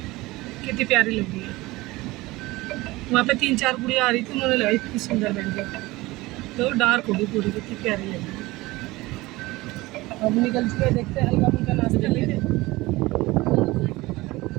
कितनी प्यारी लग रही है। वहाँ पे 3-4 गुड़िया आ रही थी, उन्होंने लगाई इतनी सुंदर मेहंदी, तो डार्क होगी पूरी, कितनी प्यारी लगी। अब निकल चुके, देखते हैं हल्का फुल्का नाश्ता लेके,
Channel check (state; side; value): quieter; left; 20.3 dB